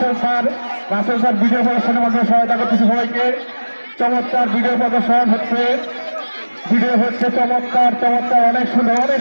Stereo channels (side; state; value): both; inverted; correlation -1.00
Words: রাসেল স্যার ভিডিও প্রদর্শনের মধ্যে সহায়তা করতেছে সবাইকে। চমৎকার ভিডিও প্রদর্শন হচ্ছে, ভিডিও হচ্ছে চমৎকার চমৎকার অনেক সুন্দর অনেক